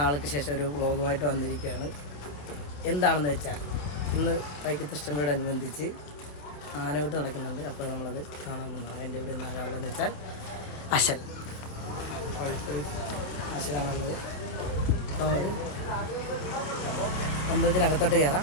ശേഷം ഒരു വ്ളോഗുമായിട്ട് വന്നിരിക്കുകയാണ്. എന്താണെന്ന് വെച്ചാൽ ഇന്ന് വൈക്കത്തഷ്ടമിയോടനുബന്ധിച്ച് ആനകൂട്ട് നടക്കുന്നുണ്ട്. അപ്പോൾ നമ്മളത് കാണാൻ വന്നതാണ്. എൻ്റെ ഇവിടെ നിന്ന് ആരാളെന്ന് വെച്ചാൽ അശലാണുള്ളത്. അപ്പോൾ അമ്പലത്തിനകത്തോട്ട് കയറാം.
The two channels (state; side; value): late; right; 27 ms